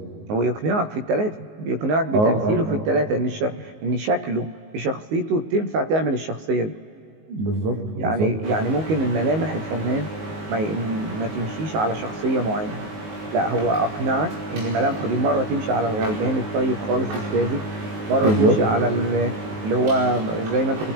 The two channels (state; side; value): late; left; 19 ms